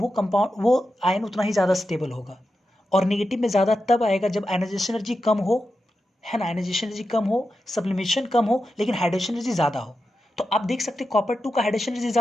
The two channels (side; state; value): both; normal; correlation 0.90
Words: आयन उतना ही ज़्यादा स्टेबल होगा। और निगेटिव में ज़्यादा तब आएगा जब आयनाइजेशन एनर्जी कम हो है ना, आयनाइजेशन एनर्जी कम हो, सब्लिमेशन कम हो, लेकिन हाइड्रेशन एनर्जी ज़्यादा हो। तो आप देख सकते हैं कॉपर 2 का हाइड्रेशन एनर्जी